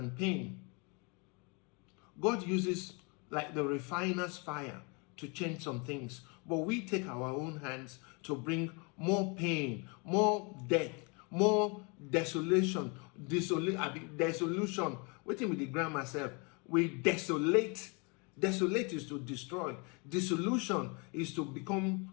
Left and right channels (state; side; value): quieter; right; 31.7 dB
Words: pain, God uses like the refiner's fire to change some things. But we take our own hands to bring more pain, more death, more desolation. Dissolution. Waiting with the grammar myself. We desolate Desolate is to destroy. Dissolution is to become